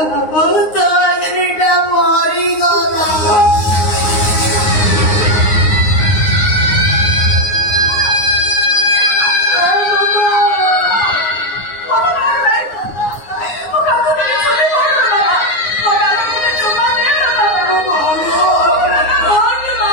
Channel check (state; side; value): late; right; 9.6 ms